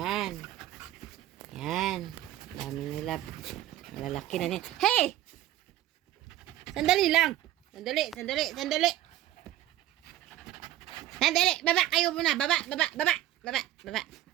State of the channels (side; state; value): left; quieter; 13.7 dB